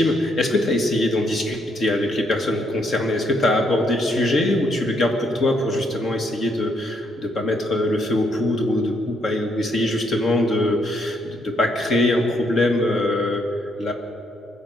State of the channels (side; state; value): both; normal; correlation 0.73